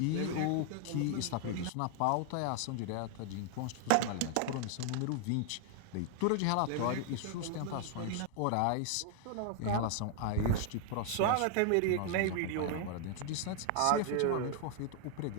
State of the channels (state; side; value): different; both; correlation 0.00